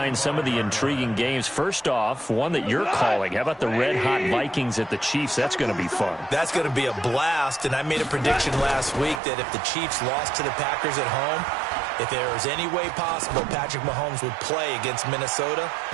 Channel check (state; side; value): drops out; left; at 9.2 s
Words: some of the intriguing games. First off, one that you're calling. How about the red-hot Vikings at the Chiefs? That's going to be fun. That's going to be a blast, and I made a prediction last week that if the Chiefs lost to the Packers at home, if there was any way possible Patrick Mahomes would play against Minnesota,